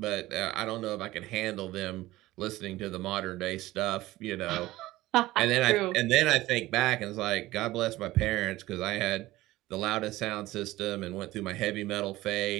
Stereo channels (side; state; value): left; quieter; 17.3 dB